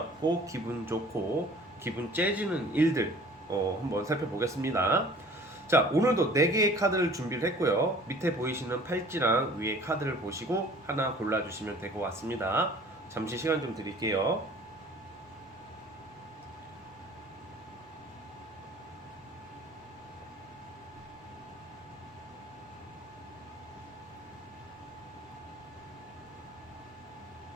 기분 좋고 기분 째지는 일들 한번 살펴보겠습니다. 자, 오늘도 4개의 카드를 준비를 했고요. 밑에 보이시는 팔찌랑 위에 카드를 보시고 하나 골라주시면 될 것 같습니다. 잠시 시간 좀 드릴게요.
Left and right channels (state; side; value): normal; both; correlation 0.49